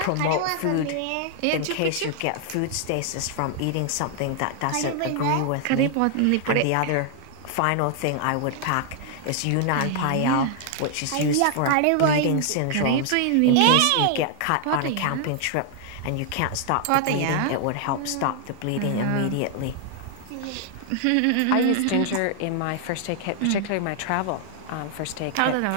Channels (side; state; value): both; different; correlation 0.00